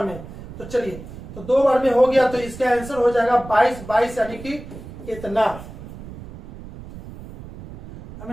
में। तो चलिए तो 2 बार में हो गया तो इसका आंसर हो जाएगा 22 यानी कि इतना।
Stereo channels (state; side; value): noise; right; rumble, 14 dB below the sound